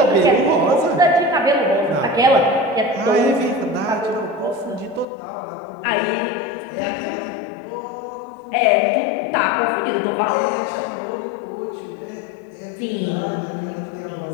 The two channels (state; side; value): drops out; right; at 5.1 s